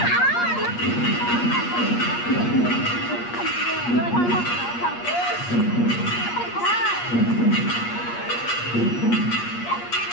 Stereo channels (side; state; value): right; late; 8.4 ms